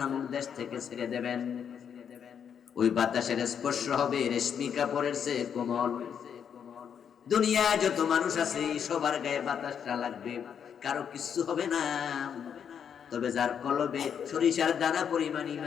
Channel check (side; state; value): right; quieter; 7.8 dB